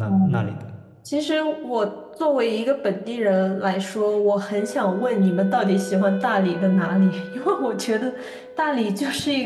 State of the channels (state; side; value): identical; both; correlation 1.00